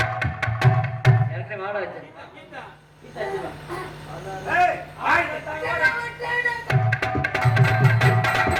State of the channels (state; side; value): identical; both; correlation 1.00